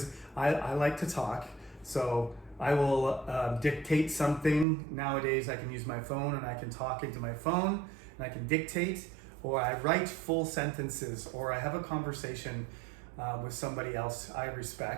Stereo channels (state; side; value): drops out; left; at 4.7 s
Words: I like to talk. So I will dictate something. Nowadays I can use my phone and I can talk into my phone and I can dictate, or I write full sentences, or I have a conversation with somebody else I